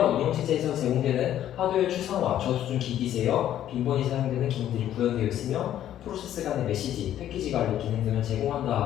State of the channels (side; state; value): right; quieter; 11.5 dB